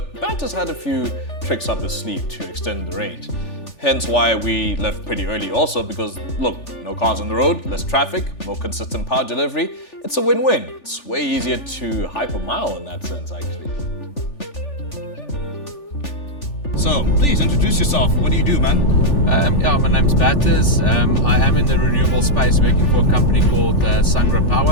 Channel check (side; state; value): right; late; 3.4 ms